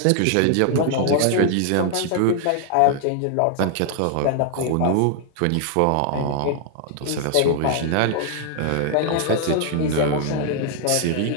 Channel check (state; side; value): different; both; correlation 0.00